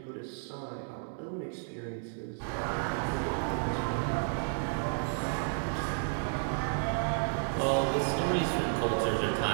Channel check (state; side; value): silent; left; digital silence